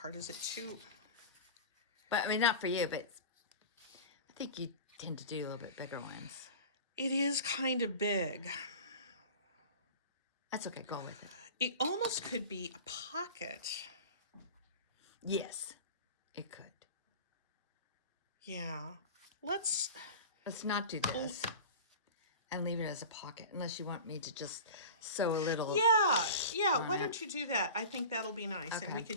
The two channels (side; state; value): both; inverted; correlation -0.34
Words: Is it too? But I mean, not for you, but I think you tend to do a little bit bigger ones. It is kind of big. That's okay. Go with it. It almost could be a pocket. Yes, it could. Yeah. Let's not do this and leave it as a pocket unless you want me to just sew a little. Yeah. Why don't you do that? I think that'll be nice. Okay. And we